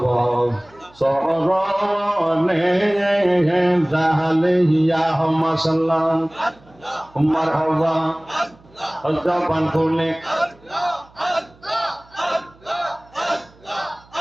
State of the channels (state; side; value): noise; right; hum, 28 dB below the sound